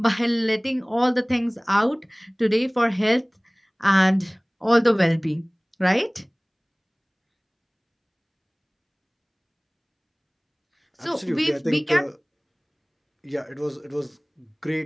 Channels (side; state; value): both; identical; correlation 1.00